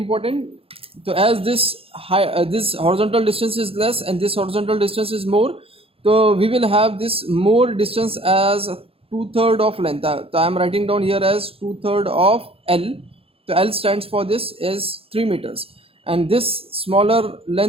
So as this this horizontal distance is less and this horizontal distance is more, so we will have this more distance as 2/3 of length. So I am writing down here as 2/3 of L. So L stands for this is 3 meters, and this smaller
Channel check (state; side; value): late; left; 0.27 ms